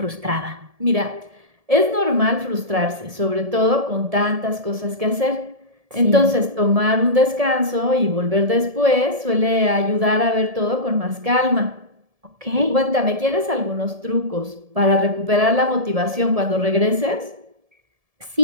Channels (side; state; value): left; late; 1.7 ms